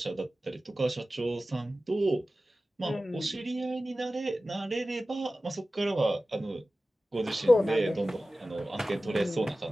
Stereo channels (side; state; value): both; normal; correlation 0.96